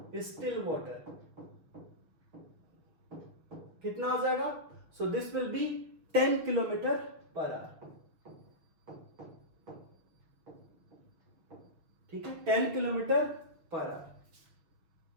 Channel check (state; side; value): late; left; 6.3 ms